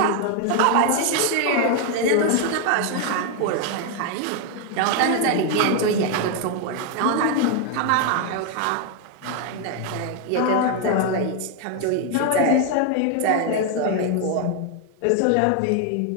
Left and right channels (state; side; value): different; both; correlation 0.01